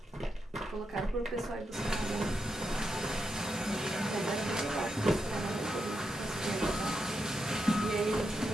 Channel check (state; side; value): normal; both; correlation 0.84